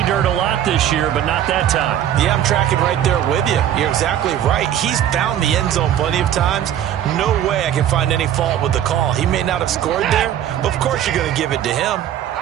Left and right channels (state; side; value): quieter; left; 10.7 dB